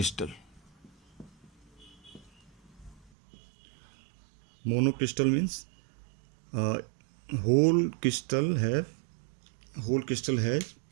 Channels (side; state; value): left; drops out; at 3.1 s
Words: Monocrystal means whole crystal has